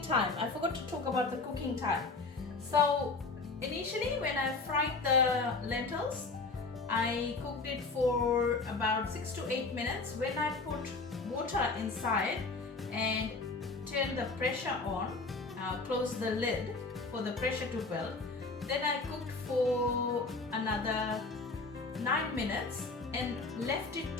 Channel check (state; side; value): quieter; right; 3.8 dB